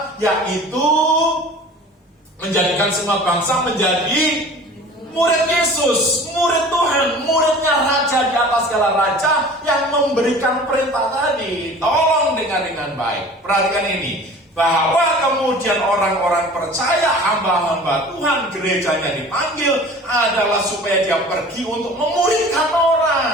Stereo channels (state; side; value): normal; both; correlation 0.43